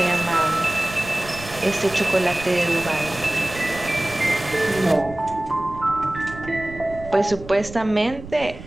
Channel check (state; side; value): noise; right; rumble, 15 dB below the sound